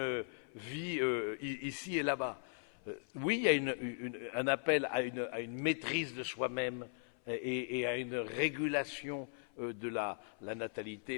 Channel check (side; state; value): right; silent; 52 dB below the other